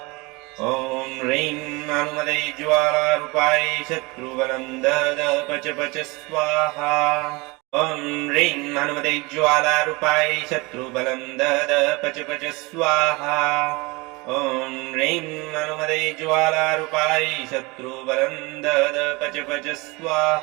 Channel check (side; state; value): left; quieter; 25.1 dB